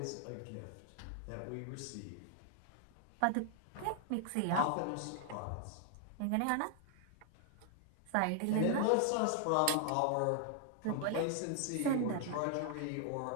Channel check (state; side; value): different; both; correlation 0.00